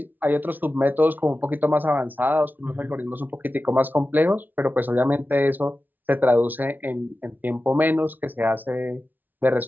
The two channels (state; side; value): late; left; 0.085 ms